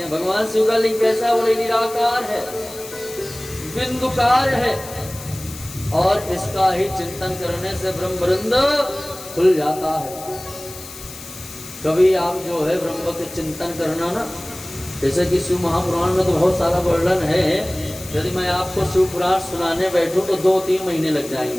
भगवान शिव का लिंग कैसा, बोले निराकार है, बिंदुकार है और इसका ही चिंतन करने से ब्रह्मवृंद खुल जाता है। कभी आप जो है ब्रह्म के चिंतन करना ना, जैसे कि शिव महापुराण में तो बहुत सारा वर्णन है, यदि मैं आपको शिव पुराण सुनाने बैठूं तो 2-3 महीने लग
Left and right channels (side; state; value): left; noise; hiss, 14 dB below the sound